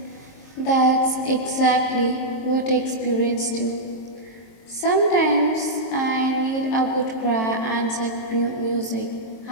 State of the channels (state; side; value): late; right; 22 ms